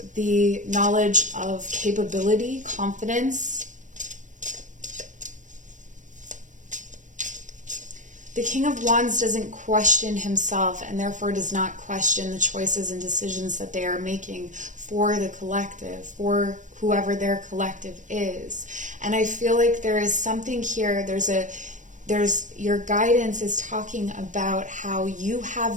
the knowledge of capability, confidence. The King of Wands doesn't question himself, and therefore does not question the choices and decisions that they are making for the collective, for whoever their collective is. And I feel like there is something here, your guidance is talking about how you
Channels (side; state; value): left; late; 0.36 ms